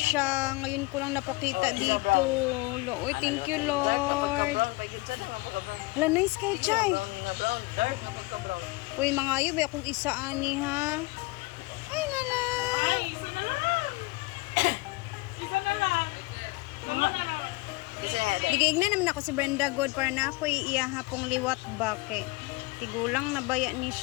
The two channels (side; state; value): right; quieter; 23.3 dB